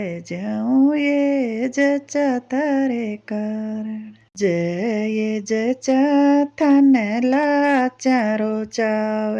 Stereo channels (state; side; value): identical; both; correlation 1.00